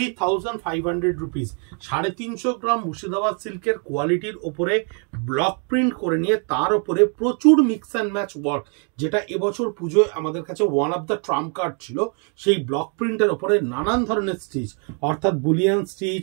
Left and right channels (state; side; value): quieter; left; 39.8 dB